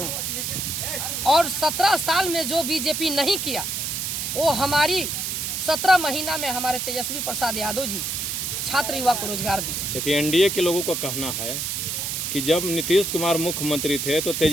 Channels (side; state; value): right; noise; hiss, 2 dB below the sound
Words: और 17 साल में जो बीजेपी नहीं किया वो हमारी 17 महीना में हमारे तेजस्वी प्रसाद यादव जी छात्र युवा को रोजगार दिए। देखिए, एनडीए के लोगों का कहना है कि जब नीतीश कुमार मुख्यमंत्री थे तो